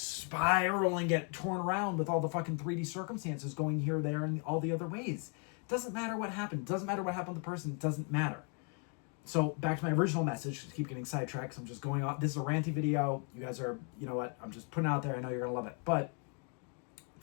and get torn around with all the fucking 3D circumstances going here, there, and all the other ways. Doesn't matter what happened. Doesn't matter what happened to the person. It doesn't matter. So back to my original message. Just keep getting sidetracked. So I'm just going on. This is a ranty video. You guys are, you know what? I'm just putting it out there. I know you're going to love it. But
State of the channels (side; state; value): right; quieter; 38.4 dB